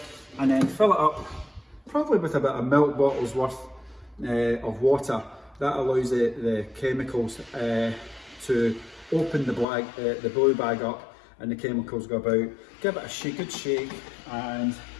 and then fill it up, probably with about a milk bottle's worth of water. That allows the chemicals to open the blue bag up, and the chemicals go about. Give it a good shake, and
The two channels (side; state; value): right; drops out; at 9.7 s